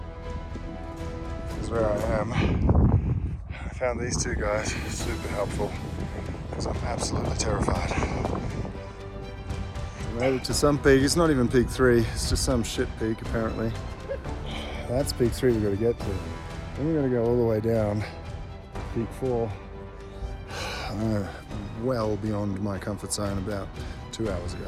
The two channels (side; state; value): both; identical; correlation 1.00